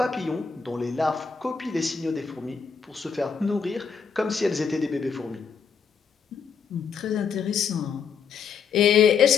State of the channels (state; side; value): quieter; right; 6.1 dB